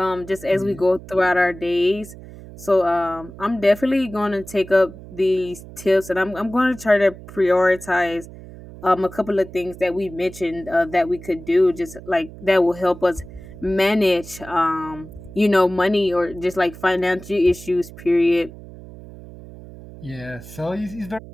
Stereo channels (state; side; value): noise; right; hum, 16 dB below the sound